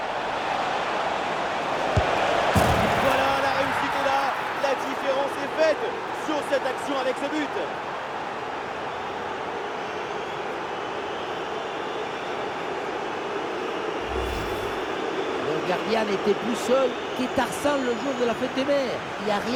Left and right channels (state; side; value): identical; both; correlation 1.00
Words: Voilà, la réussite est là. La différence est faite sur cette action avec ce but. Le gardien n'était plus seul que Tarzan le jour de la fête des mers. Il n'y a